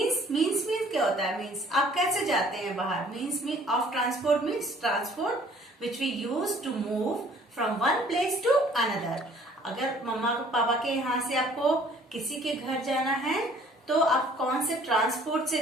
Means क्या होता है? Means आप कैसे जाते हैं बाहर? Means of transport means transport which we use to move from one place to another. अगर मम्मा पापा के यहाँ से आपको किसी के घर जाना है तो आप कौन से ट्रांसपोर्ट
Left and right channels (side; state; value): both; normal; correlation 0.56